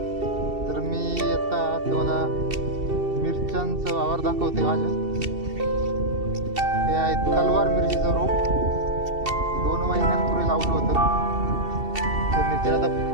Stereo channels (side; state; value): left; late; 2.7 ms